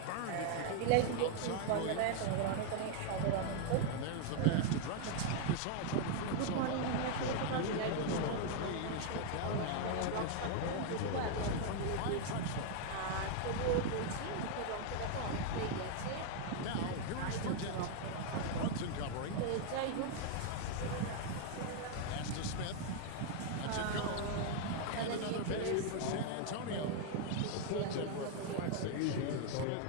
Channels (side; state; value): both; different; correlation 0.00